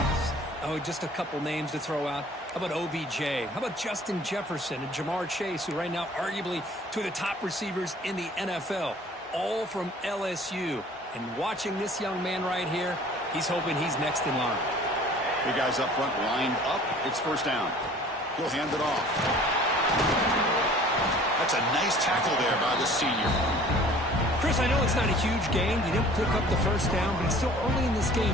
Oh, just a couple names to throw out. How about OBJ? How about Justin Jefferson and Jamar Chase, who right now arguably two of the top receivers in the NFL, all from LSU. And watching this young man right here, he's hoping he's next in line. Big guys up front lined up. It's 1st down. He'll hand it off. That's a nice tackle there by the senior. Chris, I know it's not a huge gain. You didn't pick up the 1st down, but it's still early in this game.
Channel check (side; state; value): both; normal; correlation 0.50